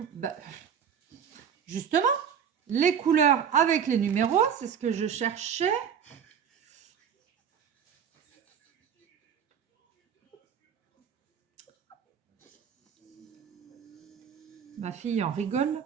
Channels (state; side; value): quieter; left; 7.8 dB